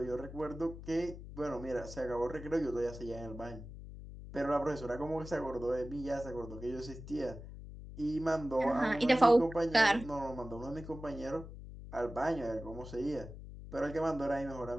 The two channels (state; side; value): noise; left; hum, 12 dB below the sound